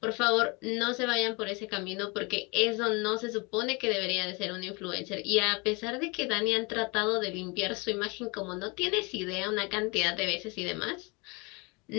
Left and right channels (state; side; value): quieter; right; 28.7 dB